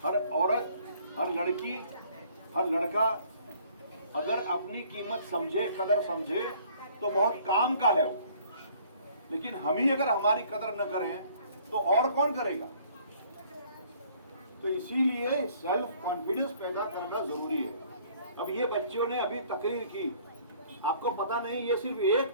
हर औरत, हर लड़की, हर लड़का अगर अपनी कीमत समझे, कदर समझे, तो बहुत काम का है वो। लेकिन हम ही अगर हमारी कदर न करें तो और कौन करेगा। तो इसीलिए सेल्फ कॉन्फिडेंस पैदा करना जरूरी है। अब ये बच्चों ने अभी तकरीर की, आपको पता नहीं, ये सिर्फ एक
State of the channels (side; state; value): both; inverted; correlation -0.58